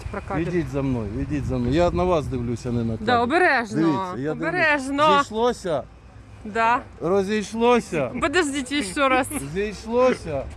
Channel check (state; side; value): identical; both; correlation 1.00